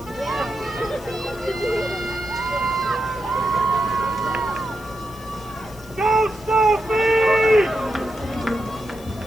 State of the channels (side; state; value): left; noise; hiss, 21 dB below the sound